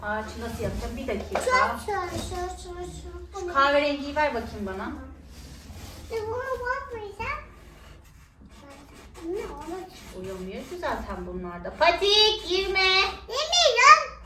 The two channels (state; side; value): identical; both; correlation 1.00